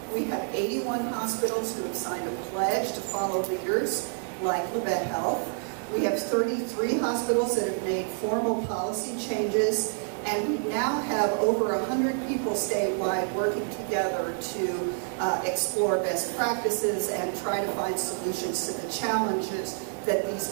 We have 81 hospitals who have signed a pledge to follow leaders like Labette Health. We have 33 hospitals that have made formal policy changes, and we now have over 100 people statewide working together to explore best practices and try to find solutions to the challenges that these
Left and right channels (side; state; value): left; silent; 59 dB below the other